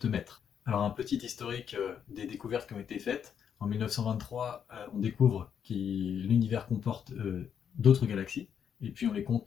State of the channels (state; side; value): quieter; right; 8.1 dB